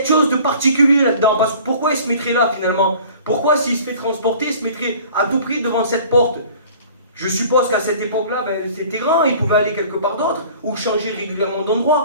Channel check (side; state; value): both; inverted; correlation -0.47